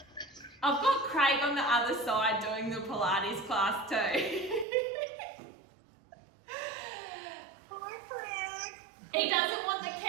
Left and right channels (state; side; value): drops out; left; at 4.7 s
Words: I've got Craig on the other side doing the Pilates class too. Hi, Craig. He doesn't want the